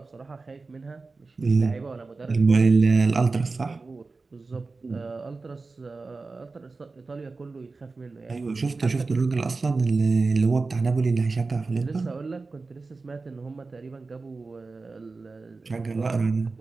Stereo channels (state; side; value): quieter; left; 3.9 dB